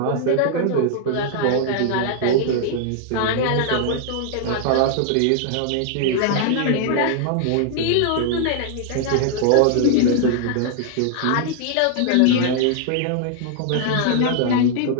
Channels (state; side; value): different; both; correlation 0.00